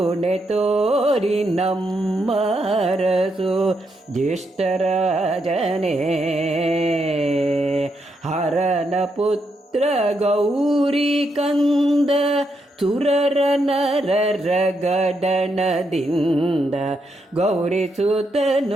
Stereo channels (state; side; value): normal; both; correlation 0.80